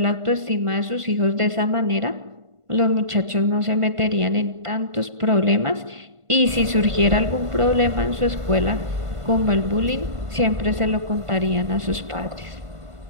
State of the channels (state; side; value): late; left; 1.5 ms